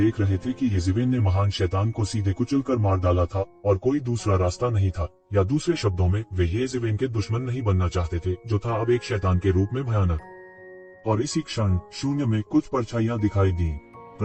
रहे थे कि येज़ेवेन ने महान शैतान को सीधे कुचलकर मार डाला था और कोई दूसरा रास्ता नहीं था, या दूसरे शब्दों में वे येज़ेवेन के दुश्मन नहीं बनना चाहते थे, जो था अब एक शैतान के रूप में भयानक। और इसी क्षण शून्य में कुछ परछाइयां दिखाई दी।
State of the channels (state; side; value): identical; both; correlation 1.00